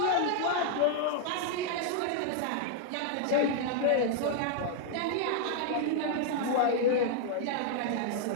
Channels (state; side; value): different; both; correlation 0.00